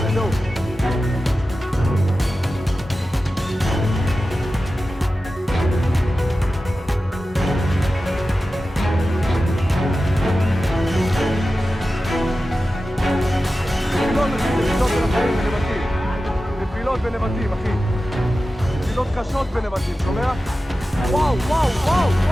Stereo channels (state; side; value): normal; both; correlation 0.94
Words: זהו. נפילות בנבטים, אחי. נפילות קשות בנבטים, שומע? וואו, וואו, וואו,